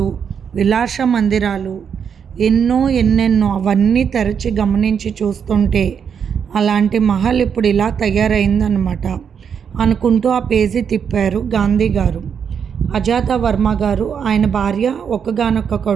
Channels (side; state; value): left; quieter; 7.3 dB